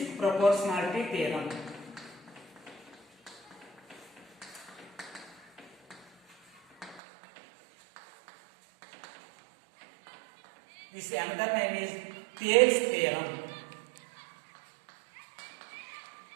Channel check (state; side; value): drops out; left; at 7.0 s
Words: proportionality theorem. This another name is Thales theorem